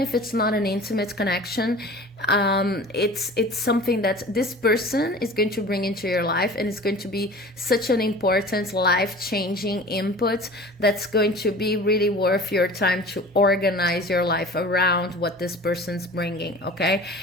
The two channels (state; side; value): normal; both; correlation 0.40